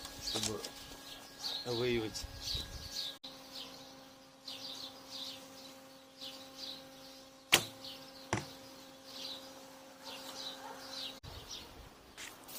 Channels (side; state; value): both; identical; correlation 1.00